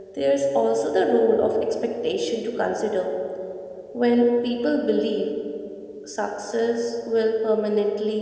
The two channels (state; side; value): identical; both; correlation 1.00